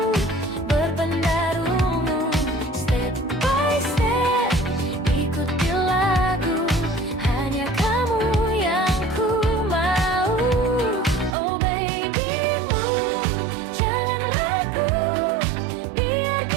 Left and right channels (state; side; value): drops out; left; at 11.4 s